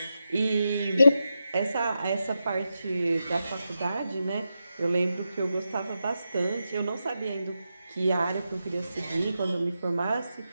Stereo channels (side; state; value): both; inverted; correlation -0.88